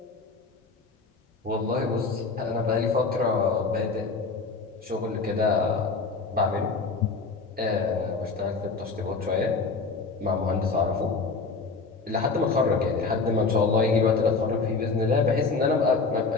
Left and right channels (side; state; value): right; quieter; 4.3 dB